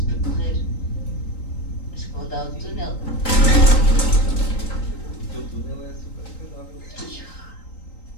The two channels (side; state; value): right; late; 3.9 ms